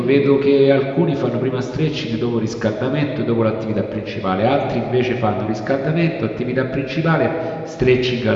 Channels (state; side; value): identical; both; correlation 1.00